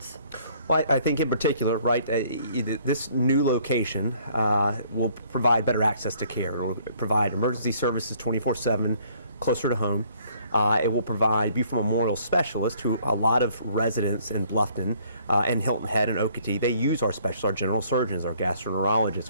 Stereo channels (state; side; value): inverted; both; correlation -0.61